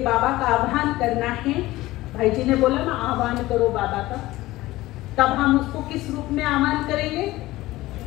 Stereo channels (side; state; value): right; quieter; 17.7 dB